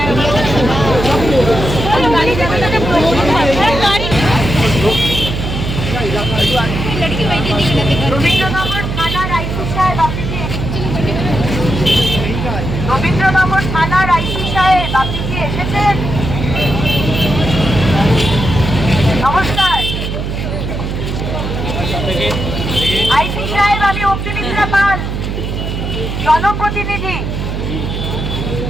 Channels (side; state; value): right; noise; hum, 4 dB below the sound